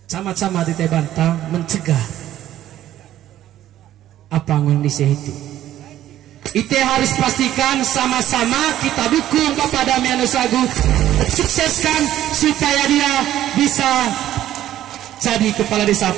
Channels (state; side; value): quieter; left; 12.7 dB